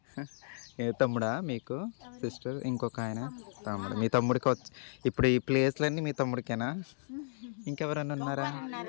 ఏ తమ్ముడా మీకు సిస్టర్? ఇంకొక ఆయన తమ్ముడు. మీ తమ్ముడికి వచ్చి ఇప్పుడు ఈ ప్లేస్లన్నీ మీ తమ్ముడికేనా? ఇంకెవరన్నా ఉన్నారా?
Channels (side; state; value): right; silent; digital silence